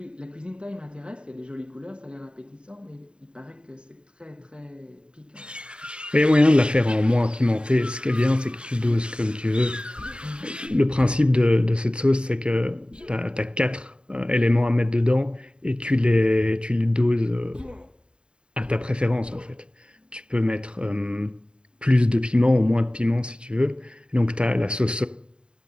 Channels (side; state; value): left; late; 0.051 ms